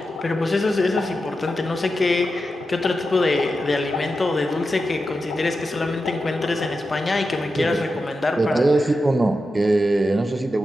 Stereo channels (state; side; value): normal; both; correlation 0.90